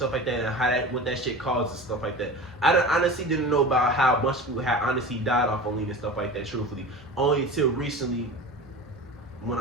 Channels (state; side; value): normal; both; correlation 0.33